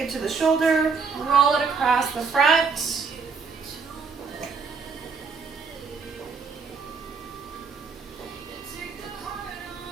it to the shoulder, roll it across the front.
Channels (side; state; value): left; quieter; 5.1 dB